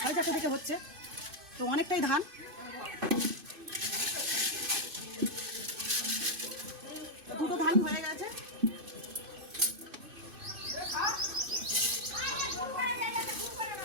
4:30 থেকে হচ্ছে, তো অনেকটাই ধান। দুটো ধান হয়ে গেছে।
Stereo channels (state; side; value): late; left; 2.5 ms